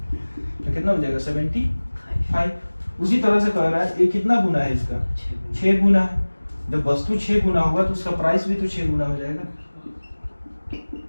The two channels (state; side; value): inverted; both; correlation -1.00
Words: कितना हो जाएगा 75। उसी तरह से कह रहा है ये कितना गुना है इसका 6 गुना है। जब वस्तु 6 गुना होगा तो उसका प्राइस भी तो 6 गुना हो जाएगा।